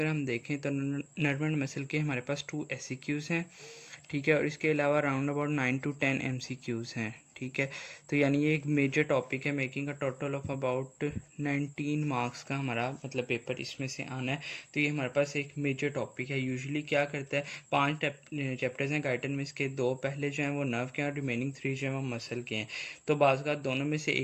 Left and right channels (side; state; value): both; identical; correlation 1.00